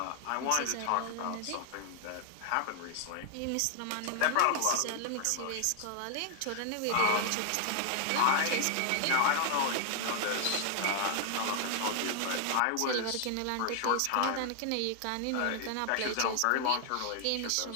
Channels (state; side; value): different; both; correlation 0.00